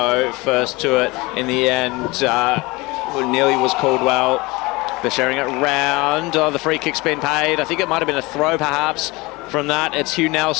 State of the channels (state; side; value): quieter; right; 23.3 dB